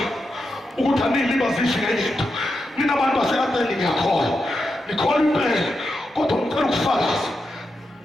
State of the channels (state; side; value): normal; both; correlation 0.87